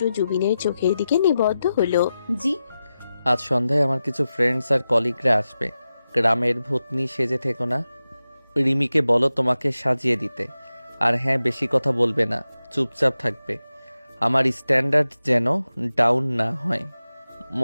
জুবিনের চোখের দিকে নিবদ্ধ হলো। জি। আজ সন্ধ্যায় আমার কিছু ফ্রেন্ডস আর কলিগরা আসবে। গ্রামের ভূতনি সেজে থেকো না। রিমিকে বলো তোমাকে সাজিয়ে দিতে। আর হ্যাঁ, বেশি কথা বলবে না, চুপচাপ থাকবে। আমার স্ট্যান্ডার্ড যেন ডাউন না হয়,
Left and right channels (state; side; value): inverted; both; correlation -0.92